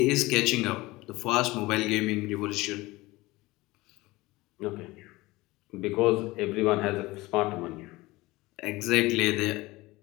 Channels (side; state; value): right; quieter; 20.6 dB